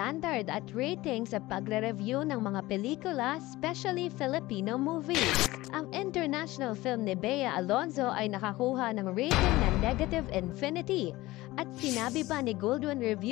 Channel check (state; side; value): quieter; right; 18.6 dB